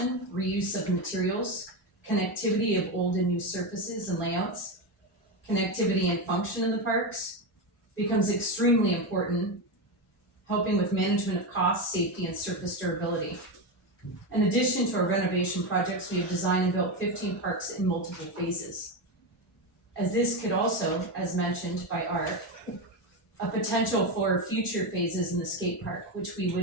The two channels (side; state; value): both; normal; correlation 0.13